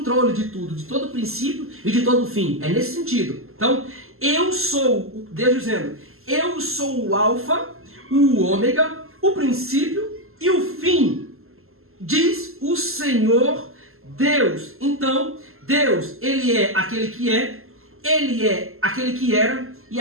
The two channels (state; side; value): late; left; 0.62 ms